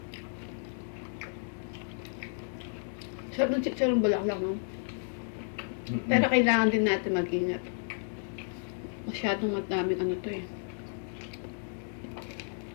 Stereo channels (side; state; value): right; silent; digital silence